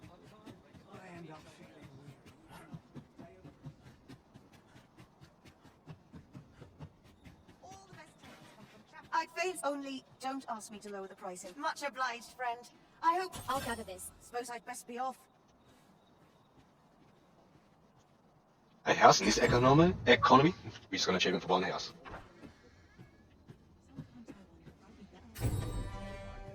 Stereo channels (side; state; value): both; identical; correlation 1.00